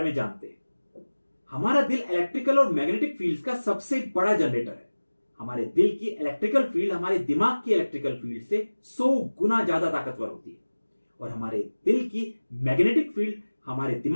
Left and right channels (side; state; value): both; inverted; correlation -1.00